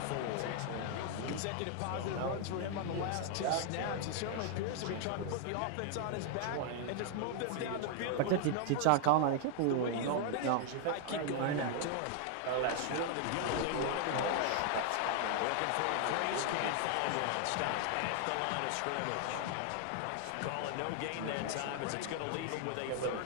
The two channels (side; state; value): both; different; correlation 0.00